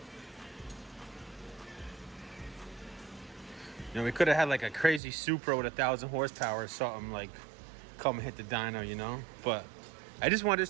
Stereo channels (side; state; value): left; drops out; at 5.0 s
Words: You know, we could have had like a crazy Supra with 1,000 horsepower or something, like come hit the dyno, you know? But I just want this